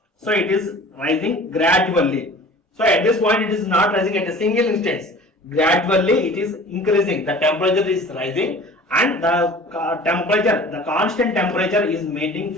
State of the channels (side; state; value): both; normal; correlation 0.44